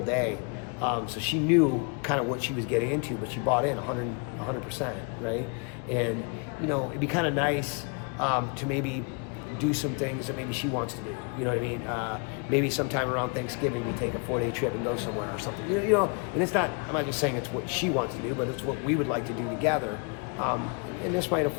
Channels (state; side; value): quieter; right; 36.0 dB